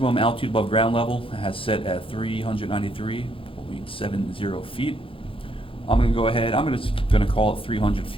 altitude above ground level has set at 393.70 feet. I'm going to go ahead, I'm going to call it 300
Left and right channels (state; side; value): late; right; 0.26 ms